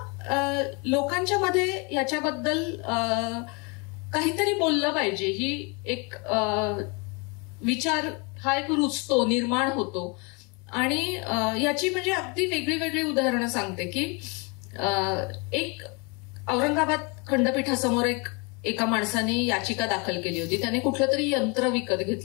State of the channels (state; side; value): quieter; right; 30.9 dB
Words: लोकांच्या मध्ये याच्याबद्दल काहीतरी बोललं पाहिजे, ही एक विचार हा एक रुजतो, निर्माण होतो. आणि याची म्हणजे अगदी वेगळी वेगळी उदाहरणं सांगते की एक औरंगाबाद खंडपीठासमोर एका माणसाने याचिका दाखल केली होती. त्याने कुठलं तरी यंत्र विकत